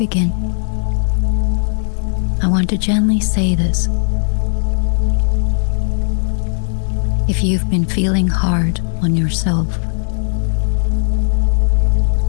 I want to gently say this. If you've been feeling hard on yourself,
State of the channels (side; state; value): right; silent; digital silence